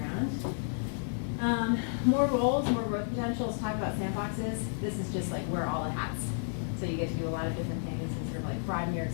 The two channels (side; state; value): right; silent; 57 dB below the other